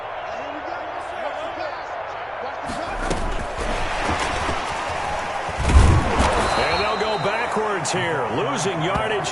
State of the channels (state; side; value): identical; both; correlation 1.00